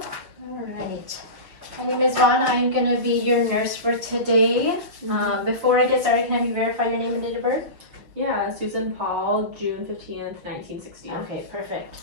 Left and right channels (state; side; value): late; left; 6.3 ms